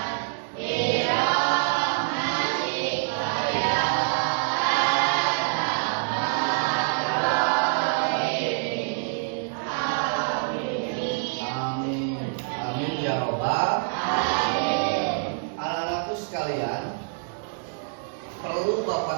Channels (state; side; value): silent; left; digital silence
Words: Anak-anakku sekalian, perlu Bapak